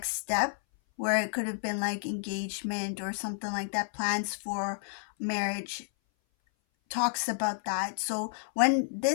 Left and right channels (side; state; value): right; silent; 57 dB below the other